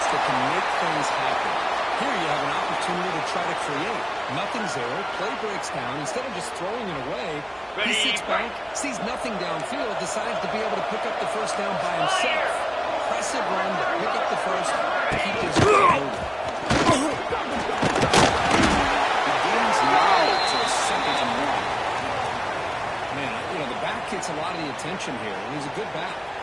that can make things happen. Here you have an opportunity to try to create. Nothing's there. Play breaks down. Instead of just throwing it away, he sits back, sees nothing downfield, decides to be able to pick up the first down by himself. Impressive run to pick up the first, keep this game moving. The game's now to a 2nd and 1. Man, you know, the back gets a lot of the attention here, and he's a good back.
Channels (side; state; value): both; identical; correlation 1.00